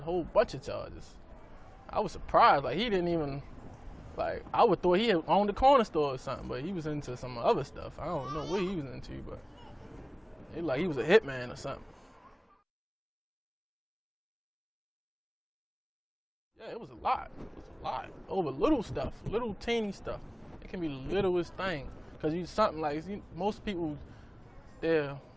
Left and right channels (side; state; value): both; identical; correlation 1.00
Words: whole bunch of charges. I was surprised. Like, he didn't even, like, I would thought he had owned a corner store or something, but he was into some other stuff. I don't know what he was into, but he was a hitman or something. Yeah, it was a lot. Over little stuff, little teeny stuff. It can be the littlest thing. Because something like, most people, their